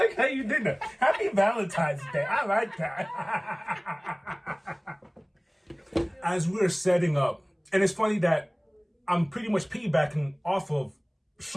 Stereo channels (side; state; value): both; identical; correlation 1.00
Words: how you did that. Happy Valentine's Day. I like that. As we're setting up, and it's funny that I'm pretty much piggybacking off of